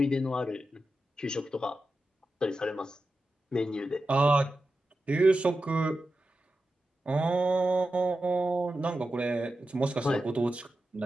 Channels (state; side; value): normal; both; correlation 0.91